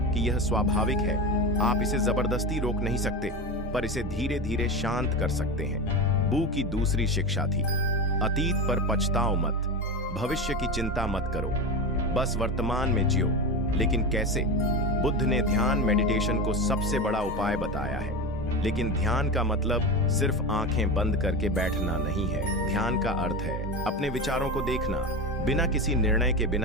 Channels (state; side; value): normal; both; correlation 0.23